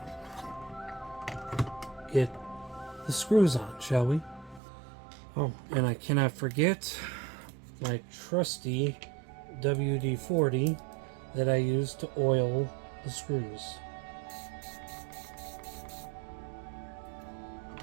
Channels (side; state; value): left; drops out; at 4.6 s